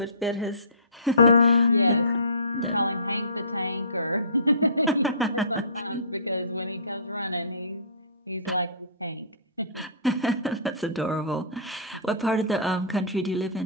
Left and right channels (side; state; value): both; inverted; correlation -0.38